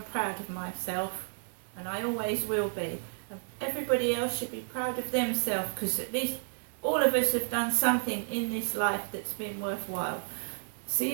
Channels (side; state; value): left; silent; digital silence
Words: proud of myself, and I always will be. And everybody else should be proud of themselves, because at least all of us have done something in this life that's been worthwhile.